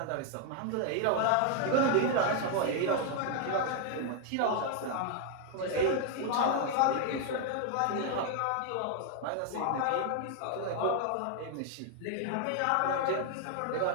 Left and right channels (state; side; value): different; both; correlation 0.00